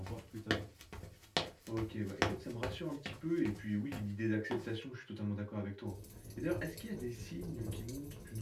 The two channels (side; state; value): both; identical; correlation 1.00